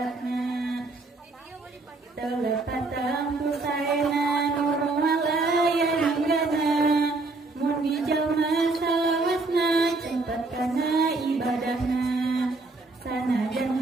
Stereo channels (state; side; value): quieter; left; 3.4 dB